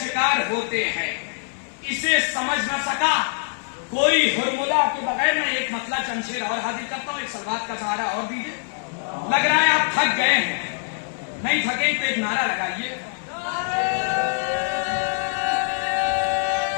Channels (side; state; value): right; silent; 60 dB below the other